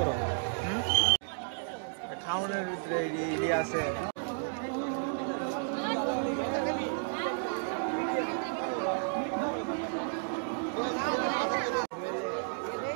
খাওয়ানোর ভিতরে ইডি আছে।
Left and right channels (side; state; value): left; silent; digital silence